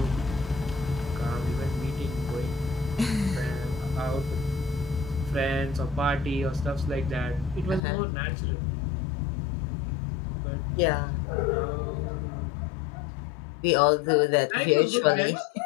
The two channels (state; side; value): drops out; right; at 7.8 s